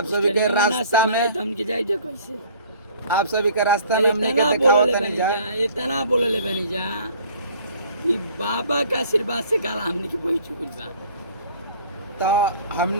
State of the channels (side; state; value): both; inverted; correlation -0.52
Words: सभी के रास्ता में हम के जाई जे कैसे आप सभी के रास्ता में हमने के दिखाओ तनी जा इतना बोले बनी जा कि बाबा का आशीर्वाद से काला हमने के वही चुकल बा। तो